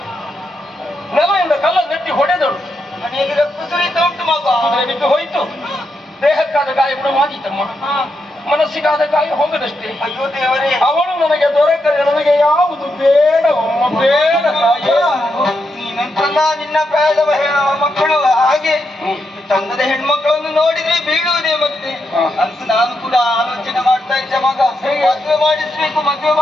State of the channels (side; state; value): both; normal; correlation 0.83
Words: ನೆಲದಿಂದ ಕಲ್ಲ ನೆಟ್ಟಿ ಹೊಡೆದಳು. ಮನೆಯಲ್ಲಿ ರಕ್ತ ಸುರಿತ ಉಂಟು ಮಗ. ಕುದುರೆ ಬಿದ್ದು ಹೋಯಿತು. ದೇಹಕ್ಕಾದ ಗಾಯ ಗುಣವಾಗಿತ್ತಮ್ಮ, ಮನಸ್ಸಿಗಾದ ಗಾಯ ಹೋಗದಷ್ಟೇ. ಅಯ್ಯೋ ದೇವರೇ, ಅವಳು ನನಗೆ ದೊರಕದೆ ನನಗೆ ಯಾವುದು ಬೇಡವಮ್ಮ, ಬೇಡ ತಾಯೇ. ನೀನಂತಲ್ಲ ನಿನ್ನ ಪ್ರಾಯದ ಮಕ್ಕಳು ಹಾಗೆ ಚಂದದ ಹೆಣ್ಮಕ್ಕಳನ್ನು ನೋಡಿದ್ರೆ ಬೀಳುವುದೇ. ಮತ್ತೆ ಅಂತ ನಾನು ಕೂಡ ಆಲೋಚನೆ ಮಾಡ್ತಾ ಇದ್ದೆ ಮಗ, ಮದುವೆ